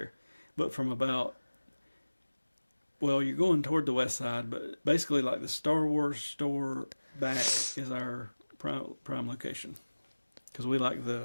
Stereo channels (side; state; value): both; inverted; correlation -1.00